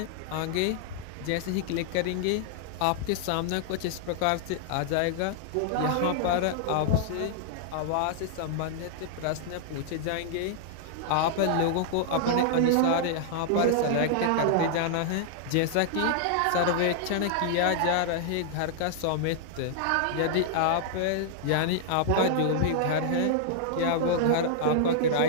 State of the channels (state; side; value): different; both; correlation -0.01